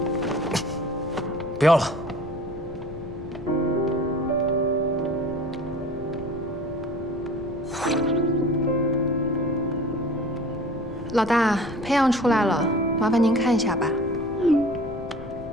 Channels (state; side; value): noise; left; rumble, 15 dB below the sound